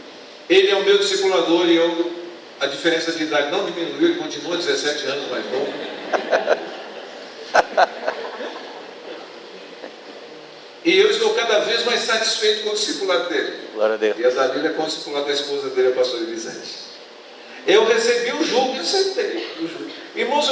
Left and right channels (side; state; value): both; identical; correlation 1.00